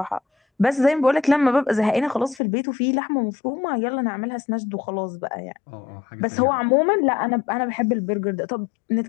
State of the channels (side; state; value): right; drops out; at 2.4 s